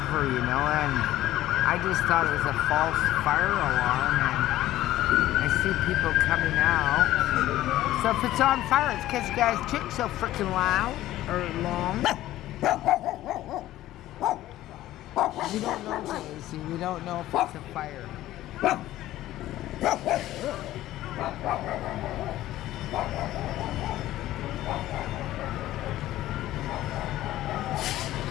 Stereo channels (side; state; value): right; quieter; 14.7 dB